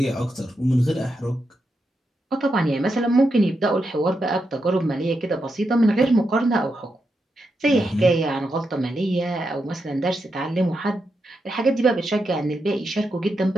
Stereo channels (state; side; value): normal; both; correlation 0.85